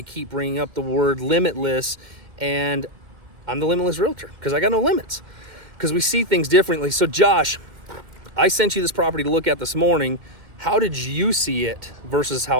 keep bringing up the word limitless. And I'm the limitless realtor because I got no limits, because we see things differently. So Josh, I sent you this property to look at this morning. How did you see it versus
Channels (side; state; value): left; late; 2.1 ms